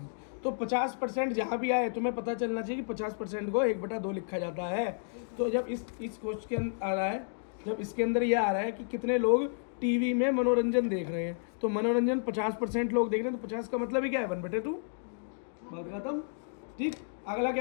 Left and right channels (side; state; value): right; silent; digital silence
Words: तो 50% जहाँ भी आए तुम्हें पता चलना चाहिए कि 50% को 1/2 लिखा जाता है। तो जब इस क्वेश्चन आ रहा है, जब इसके अंदर ये आ रहा है कि कितने लोग टीवी में मनोरंजन देख रहे हैं, तो मनोरंजन 50% लोग देख रहे हैं, तो 50 का मतलब ही क्या है, 1/2, बात खत्म, ठीक। अगला